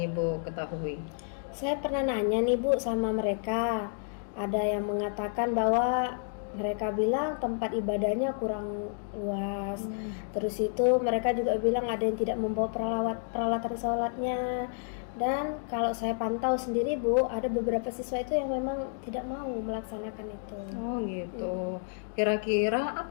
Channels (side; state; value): right; silent; digital silence